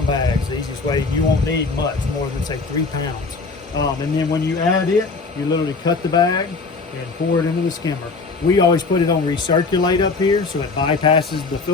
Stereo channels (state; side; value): quieter; right; 4.1 dB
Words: bags. The easiest way, you won't need much more than say 3 pounds. And then when you add it, you literally cut the bag and pour it into the skimmer. We always put it on recirculate up here so it bypasses the